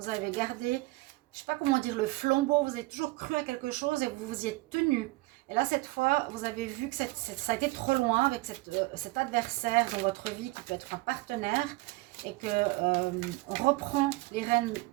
avez gardé, je ne sais pas comment dire, le flambeau. Vous avez toujours cru à quelque chose et vous vous y êtes tenu. Et là, cette fois, vous avez vu que ça a été trop loin avec cet adversaire dans votre vie qui peut être un partenaire et qu'on reprend les rênes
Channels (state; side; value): quieter; left; 21.8 dB